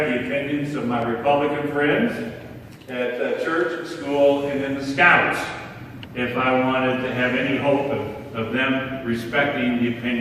the opinions of my Republican friends at church, at school, and in the Scouts, if I wanted to have any hope of them respecting the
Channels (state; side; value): identical; both; correlation 1.00